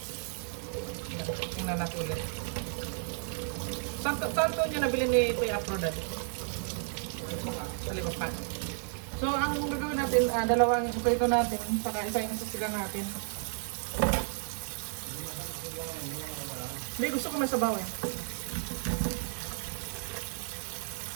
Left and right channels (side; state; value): left; silent; 56 dB below the other